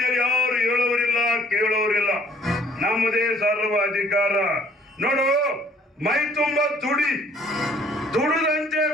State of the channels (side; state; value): both; normal; correlation 0.59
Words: ಯಾರು ಹೇಳೋರಿಲ್ಲ ಕೇಳೋರಿಲ್ಲ. ನಮ್ಮದೇ ಸರ್ವ ಅಧಿಕಾರ. ನೋಡು, ಮೈ ತುಂಬ ದುಡುದಂತೆ